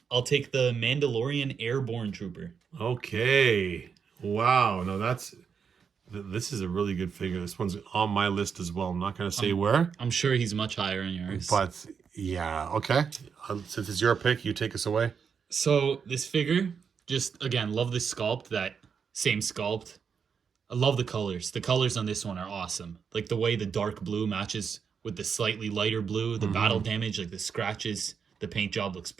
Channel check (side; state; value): left; quieter; 6.5 dB